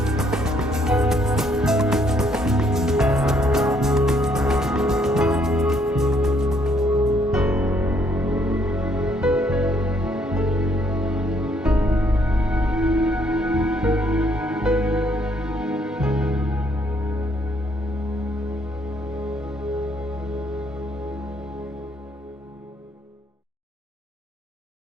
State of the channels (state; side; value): normal; both; correlation 0.69